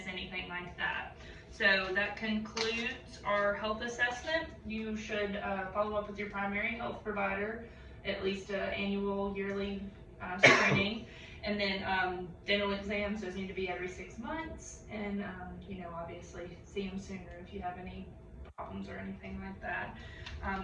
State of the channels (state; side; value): identical; both; correlation 1.00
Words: anything like that. So that concludes our health assessment. You should follow up with your primary health provider, at least annual, yearly screening. And then dental exams, those need to be every 6 months. And, obviously see them sooner if you have any problems or anything like that.